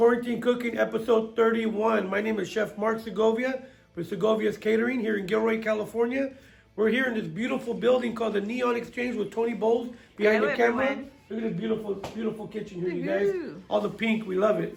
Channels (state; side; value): identical; both; correlation 1.00